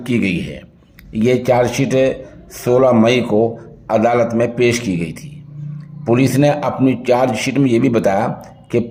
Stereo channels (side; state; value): both; identical; correlation 1.00